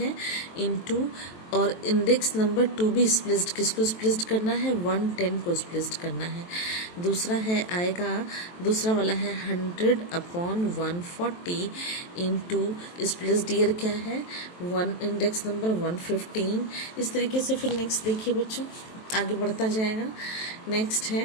इंटू, और index number to be spliced, किसको स्प्लिस्ड करना है, 110 को स्प्लिस्ड करना है। दूसरा है आएगा, दूसरा वाला है 100 अपॉन 140 इंटू स्प्लिस्ड ईयर क्या है, इंडेक्स नंबर 115। इस तरीके से फिर नेक्स्ट देखिए बच्चों आगे बढ़ता जाएगा। नेक्स्ट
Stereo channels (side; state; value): right; late; 23 ms